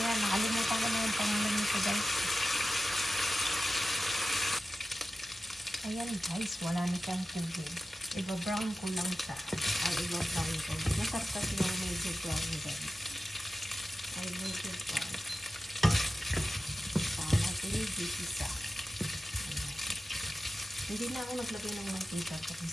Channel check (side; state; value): both; normal; correlation 0.94